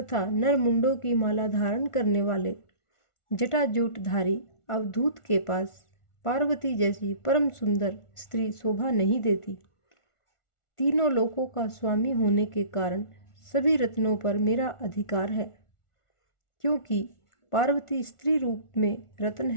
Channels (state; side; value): late; right; 1.4 ms